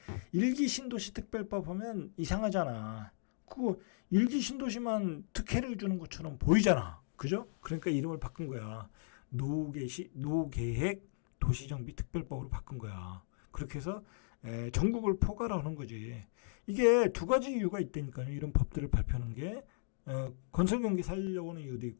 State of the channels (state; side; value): silent; right; digital silence